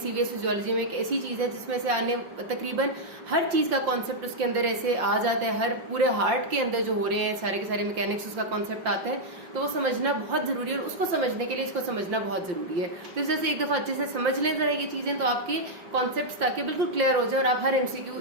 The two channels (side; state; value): left; late; 5.7 ms